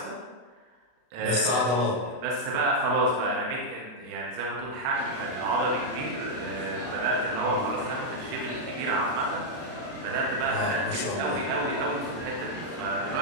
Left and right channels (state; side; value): late; left; 32 ms